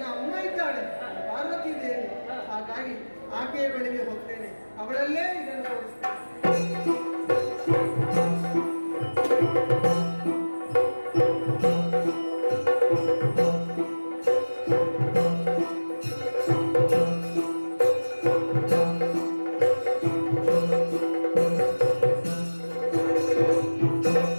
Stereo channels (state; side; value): inverted; both; correlation -1.00